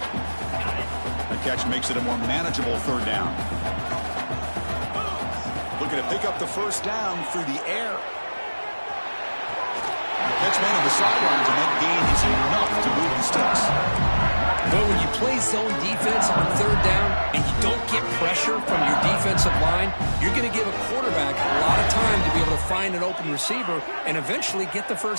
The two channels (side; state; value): both; inverted; correlation -1.00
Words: That catch makes it a more manageable 3rd down. Looking to pick up the first down through the air. Catch man on the sidelines, and that gain is enough to move the sticks. But when you play zone defense on 3rd down and you don't get pressure from your defensive line, you're going to give a quarterback a lot of time to be able to find an open receiver and eventually get the